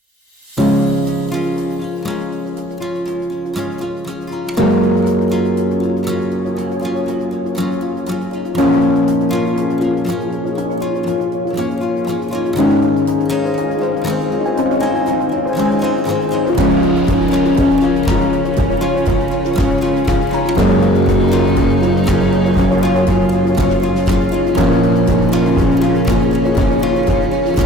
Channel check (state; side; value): normal; both; correlation 0.56